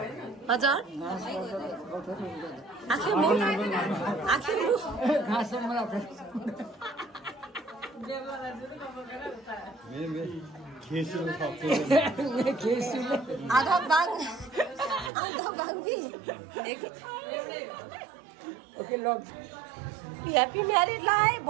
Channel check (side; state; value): left; drops out; at 15.1 s